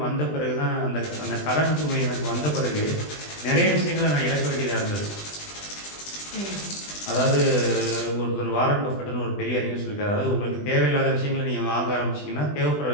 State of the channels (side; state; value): right; late; 20 ms